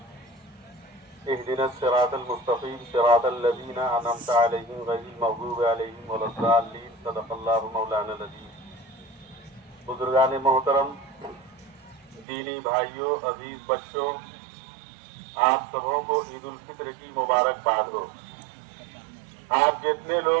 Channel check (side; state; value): left; drops out; at 12.2 s